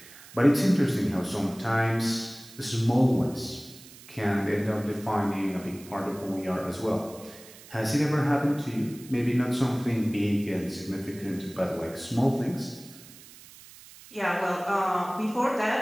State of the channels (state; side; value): noise; right; hiss, 20 dB below the sound